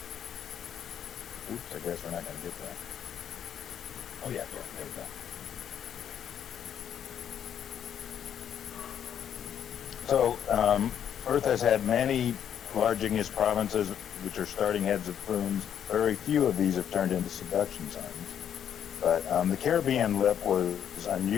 Oops, I guess we're not going to get that. Oh yeah, there we go. So Earth has had many large igneous provinces, which are starting heads of plumes. Very few of these have turned into subduction zones. But the Caribbean lip was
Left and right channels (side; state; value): right; quieter; 9.2 dB